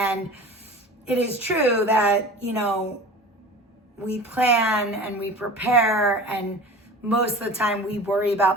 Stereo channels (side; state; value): both; normal; correlation 0.37